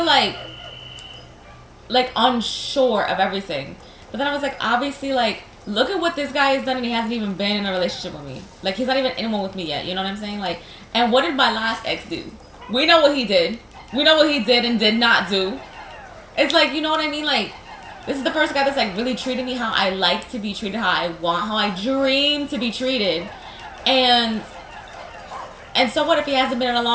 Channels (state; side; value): identical; both; correlation 1.00